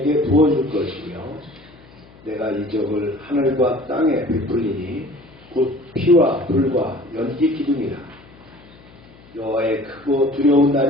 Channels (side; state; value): left; noise; hum, 25 dB below the sound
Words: 부어줄 것이며 내가 이적을 하늘과 땅에 베풀리니 곧 피와 불과 연기 기둥이라. 여호와의 크고 두려운